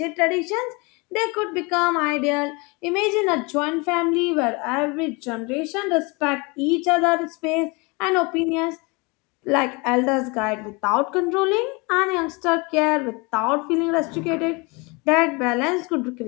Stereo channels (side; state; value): right; quieter; 27.9 dB